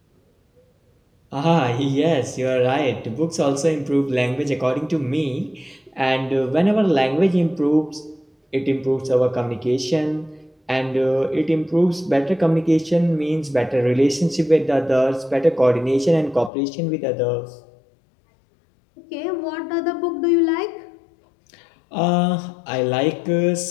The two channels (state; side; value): drops out; right; at 16.5 s